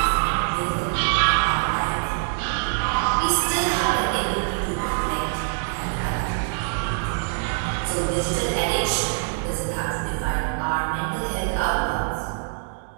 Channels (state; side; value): silent; left; 61 dB below the other